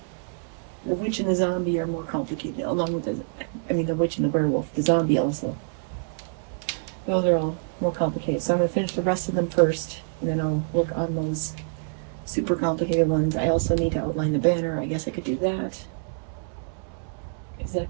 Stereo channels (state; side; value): silent; left; digital silence